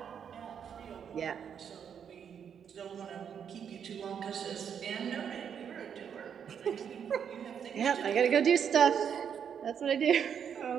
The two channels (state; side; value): quieter; left; 7.8 dB